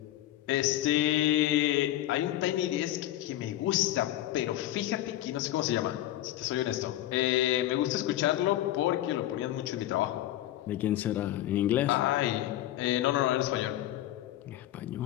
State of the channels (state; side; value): quieter; right; 14.0 dB